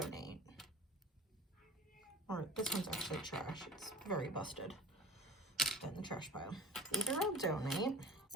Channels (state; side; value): normal; both; correlation 0.41